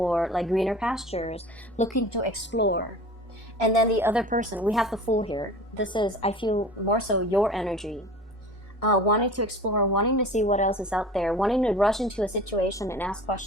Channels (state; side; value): normal; both; correlation 0.39